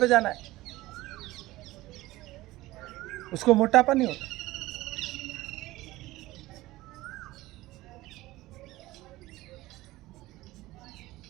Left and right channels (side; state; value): left; quieter; 18.0 dB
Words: जाना है, उसको मोटापा नहीं होता।